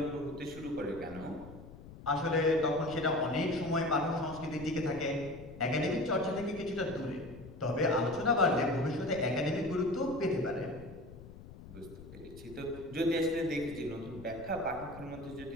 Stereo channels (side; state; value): left; noise; rumble, 16 dB below the sound